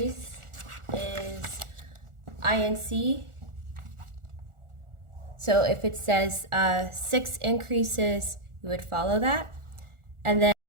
is INC. So if it says 6 increases, you would follow that. And then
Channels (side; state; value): left; late; 1.4 ms